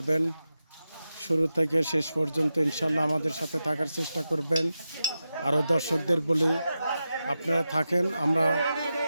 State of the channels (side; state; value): both; inverted; correlation -0.91